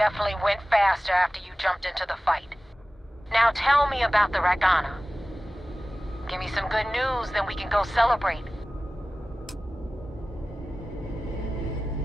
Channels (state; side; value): normal; both; correlation 0.97